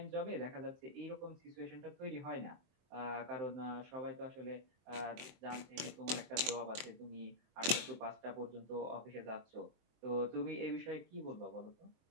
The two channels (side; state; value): left; late; 23 ms